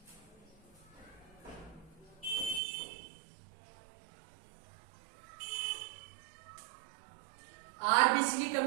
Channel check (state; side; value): drops out; left; at 2.6 s